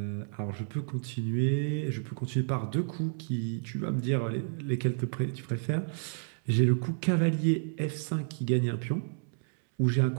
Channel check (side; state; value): left; silent; 57 dB below the other